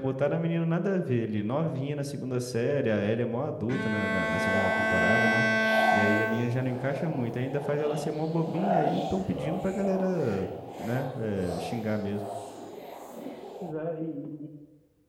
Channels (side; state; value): both; identical; correlation 1.00